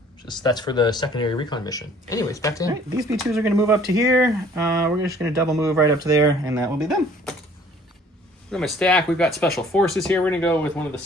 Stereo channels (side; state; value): both; normal; correlation 0.55